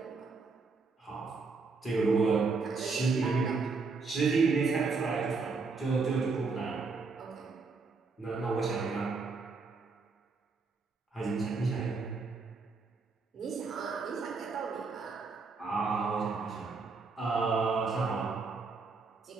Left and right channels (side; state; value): left; quieter; 4.4 dB